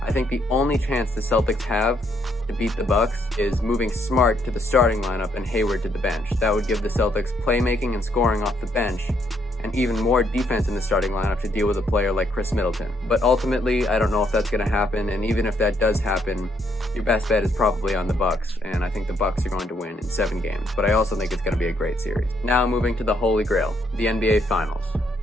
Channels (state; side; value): normal; both; correlation 0.72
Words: I think the only chance the Celtics have to beat the Bucks is moving Smart to the starting lineup and Hayward to the bench. That would give the Celtics playmaking and scoring off the bench, and even more defense in the starting lineup to deal with a player like Chris Middleton. But ultimately, I don't know if that's going to happen, and even if that does happen, your best bet is probably on the Bucks, and I think the Bucks are going to win in 7 games, but I also think it's going to be a great series. Now moving to the Holy Grail, the NBA Finals.